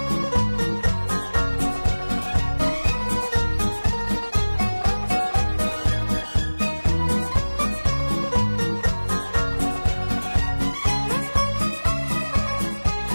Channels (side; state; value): both; inverted; correlation -1.00